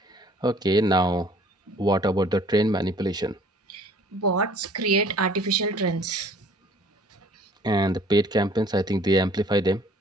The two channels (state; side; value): normal; both; correlation 0.54